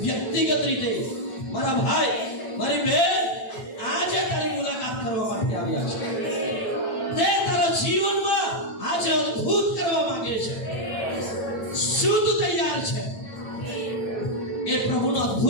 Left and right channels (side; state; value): right; late; 8.9 ms